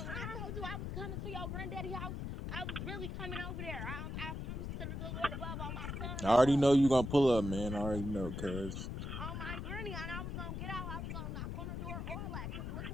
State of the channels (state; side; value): noise; left; rumble, 5 dB below the sound